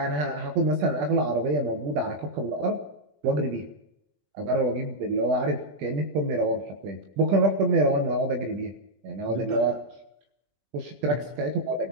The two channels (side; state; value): left; late; 20 ms